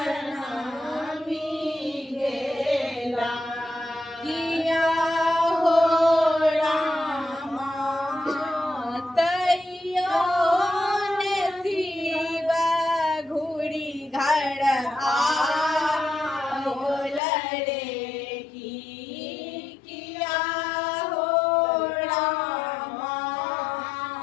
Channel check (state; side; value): drops out; right; at 17.2 s